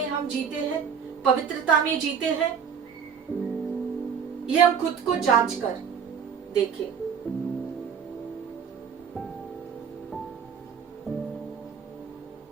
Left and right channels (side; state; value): left; quieter; 7.1 dB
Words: हम जीते हैं, पवित्रता में जीते हैं? ये हम खुद को जांच कर देखें।